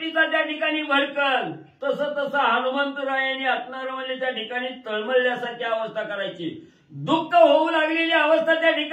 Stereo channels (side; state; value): both; identical; correlation 1.00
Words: त्या ठिकाणी भडकल तसं तसं हनुमंतरायाने असणारं म्हणजे त्या ठिकाणी तळमळल्यासारखी अवस्था करायची. दुःख होऊ लागलेली अवस्था त्या